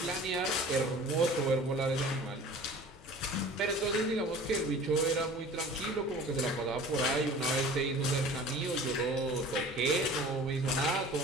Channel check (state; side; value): normal; both; correlation 0.43